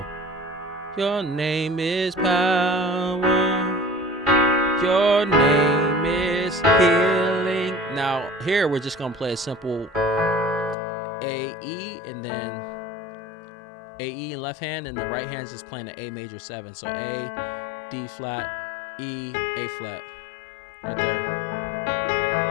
Your name is power. Your name is healing. Now here we're just gonna play a simple A, E, and then A, E in left hand, and the right hand's just playing the A major 7. So A, D flat, E, A flat. Right there.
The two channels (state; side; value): drops out; right; at 10.8 s